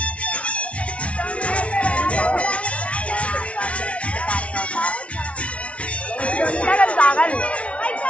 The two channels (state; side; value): late; right; 0.062 ms